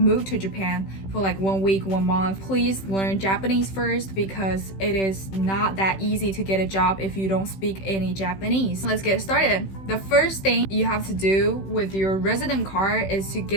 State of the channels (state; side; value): late; right; 16 ms